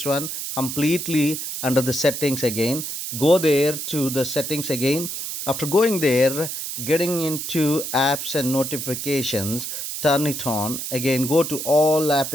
one completely. Under the settings again, go there to the settings again. After going there, getting into apps and notifications, turn it on again. Go to all app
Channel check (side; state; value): right; noise; hiss, 5 dB below the sound